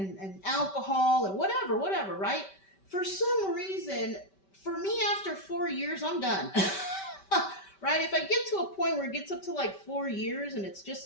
alcohol and whatever, right? For some reason, for me, after 4 years, I'm done. Right? If I get to a point where it gets up to like 4 years and it's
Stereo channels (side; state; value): right; late; 5.2 ms